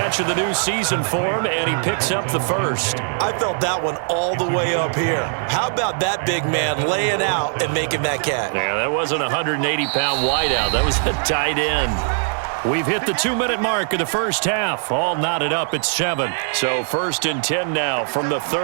of the new season for him, and he picks up the first. I felt that one all the way up here. How about that big man laying out and making that catch? Yeah, that wasn't a 180-pound wideout. That was a tight end. We've hit the 2-minute mark of the first half. All knotted up at 7. So 1st and 10 now from the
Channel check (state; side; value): silent; left; 65 dB below the other